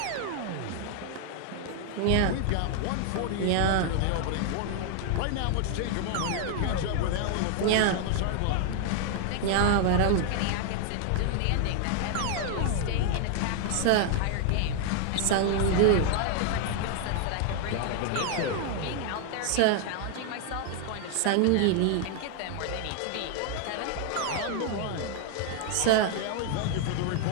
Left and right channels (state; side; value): different; both; correlation 0.00